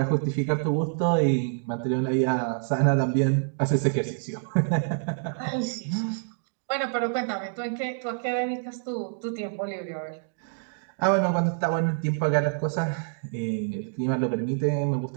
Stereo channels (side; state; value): left; silent; digital silence